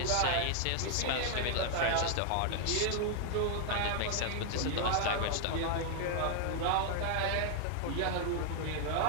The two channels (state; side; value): different; both; correlation 0.00